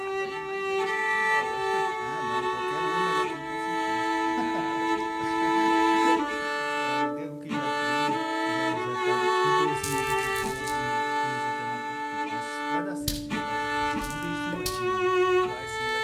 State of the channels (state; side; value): identical; both; correlation 1.00